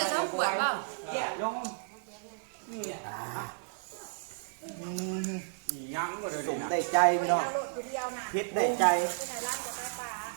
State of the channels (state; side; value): silent; left; 56 dB below the other